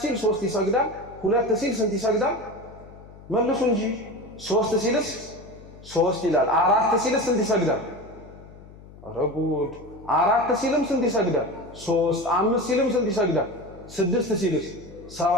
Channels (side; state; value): left; noise; hum, 20 dB below the sound